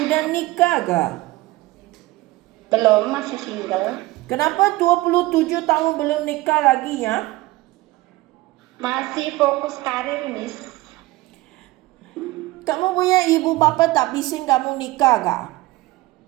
udah nikah gak? Belum, masih single. Kenapa 27 tahun belum nikah lagi ya? Masih fokus karir, Miss. Kamu punya ibu bapa tak bising kamu nikah gak?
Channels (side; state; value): left; quieter; 19.4 dB